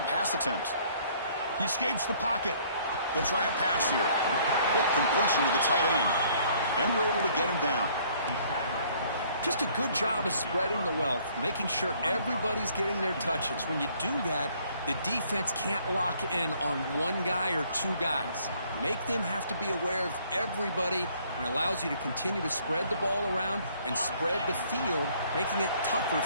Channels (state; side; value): inverted; both; correlation -0.61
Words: pass attempt. He escapes the pocket. They'll try a pass here. Quick completion to the tight end. And we're able to get him down. Just a good job of spreading the wealth, making sure everybody's getting their touches. When you do that, the defense can't lock in on one guy or two guys. Make them have to be aware of everybody, and allows you to continue to spread the ball around and spread the field, making it tougher